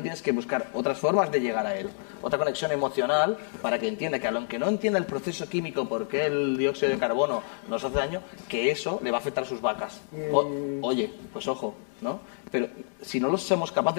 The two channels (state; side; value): silent; right; digital silence